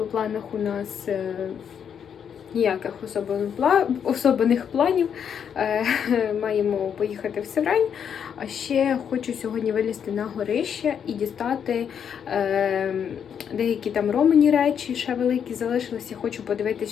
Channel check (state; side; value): quieter; right; 7.9 dB